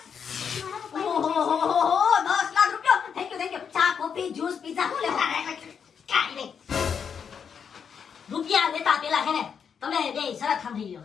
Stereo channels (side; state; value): right; quieter; 7.0 dB